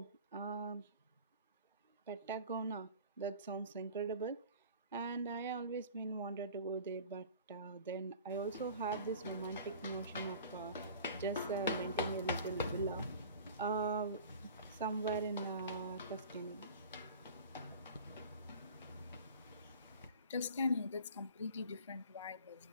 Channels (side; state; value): both; inverted; correlation -0.42